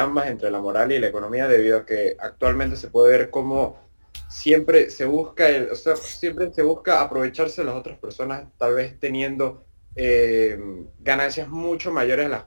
entre la moral y la economía, debido a que actualmente se puede ver cómo siempre se busca, o sea, siempre se busca aprovecharse de las otras personas, tal vez teniendo eh, ganancias mucho mayores de las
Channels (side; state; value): both; inverted; correlation -1.00